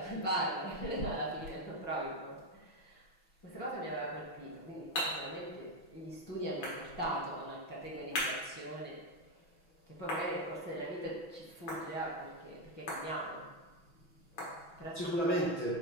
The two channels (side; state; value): right; late; 6.1 ms